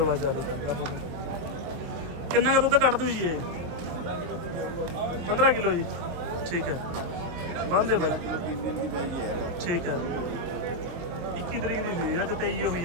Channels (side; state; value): left; late; 23 ms